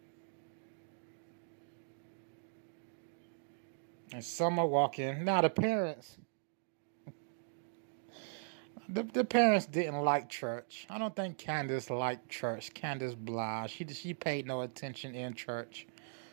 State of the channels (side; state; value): left; silent; digital silence